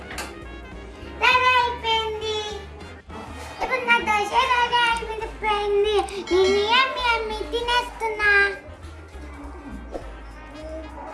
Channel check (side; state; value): both; identical; correlation 1.00